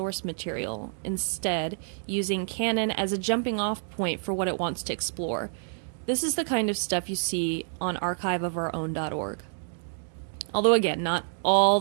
material, instead using canon as a jumping-off point for what it wants to explore. This is the kind of stuff you see on archiveofourown.org. Although, again, not all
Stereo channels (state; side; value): silent; left; digital silence